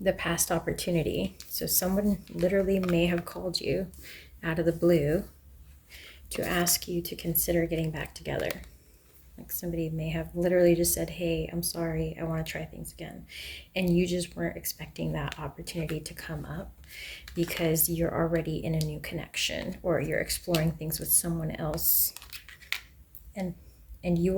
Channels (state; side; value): identical; both; correlation 1.00